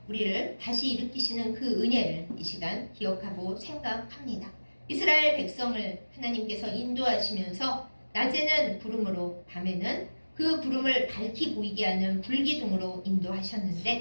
우리를 다시 일으키시는 그 은혜를 이 시간 기억하고 생각합니다. 이스라엘 백성을 하나님께서 인도하시면서 낮에는 구름으로 밤에는 그 구름을 밝히 보이게 하는 불기둥으로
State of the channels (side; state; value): both; inverted; correlation -1.00